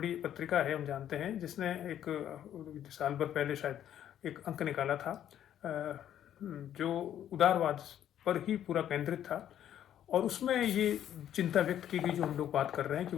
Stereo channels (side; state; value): right; quieter; 10.7 dB